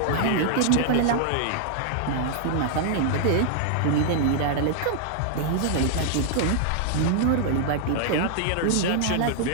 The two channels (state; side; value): different; both; correlation -0.01